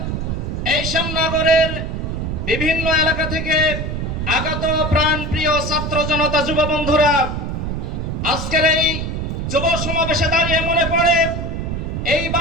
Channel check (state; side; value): noise; right; rumble, 3 dB below the sound